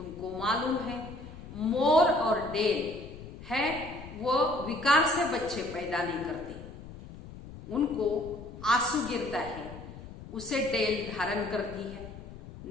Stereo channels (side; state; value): left; noise; rumble, 14 dB below the sound